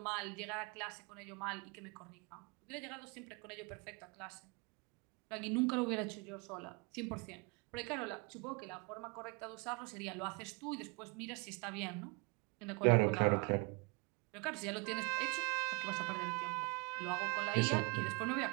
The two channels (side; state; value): left; quieter; 29.0 dB